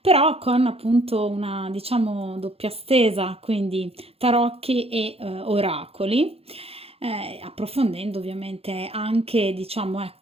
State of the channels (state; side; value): late; left; 0.29 ms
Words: con appunto una, diciamo, doppia stesa, quindi tarocchi e oracoli, approfondendo ovviamente anche, diciamo,